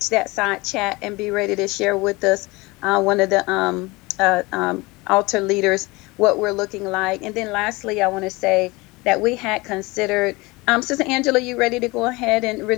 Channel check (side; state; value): right; quieter; 23.3 dB